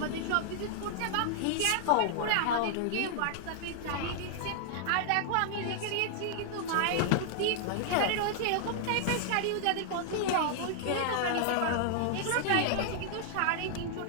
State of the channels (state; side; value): different; both; correlation -0.01